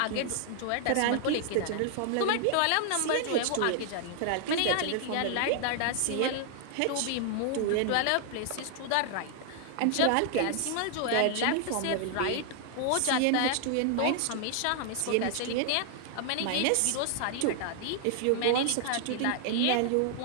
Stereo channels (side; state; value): both; different; correlation 0.00